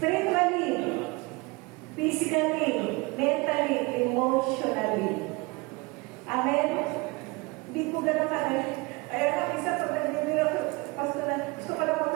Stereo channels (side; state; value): left; quieter; 25.3 dB